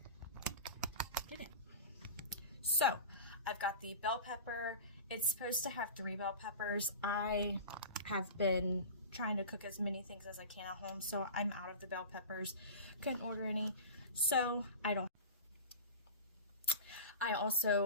get it. So I've got the bell pepper. It's supposed to have 3 bell peppers. I have been trying to cook as many things as I can at home, so I'm out of the bell peppers. Couldn't order any, so I don't. I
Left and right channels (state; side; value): inverted; both; correlation -0.33